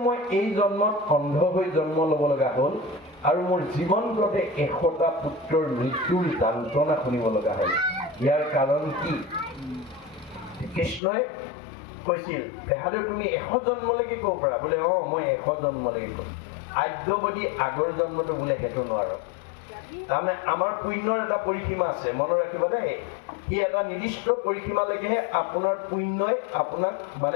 মই এই জন্মত অন্ধ হৈ জন্ম ল'ব লগা হ'ল আৰু মোৰ জীৱনটোতে 100টা পুত্ৰৰ মৃত্যুৰ যন্ত্ৰণা শুনিব লগা হ'ল। ইয়াৰ কাৰণ কি? কৃষ্ণই কৈছিল, তেহালে তুমি 100 জন্মলৈকে ক'ব পাৰা? বোলে মই 100 জন্মলৈকে ক'ম। আদ্যবদী আগৰ জন্মটো বোলে সেইটো নোৱাৰো। তাৰমানে আমাৰ পুণ্যৰ এটা পৰিসীমা আছে, মনত ৰাখিব দেই। সি এটা নিৰ্দিষ্ট পৰিসীমালৈকেহে আপোনাৰ পুণ্যই আপোনাক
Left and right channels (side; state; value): right; drops out; at 11.0 s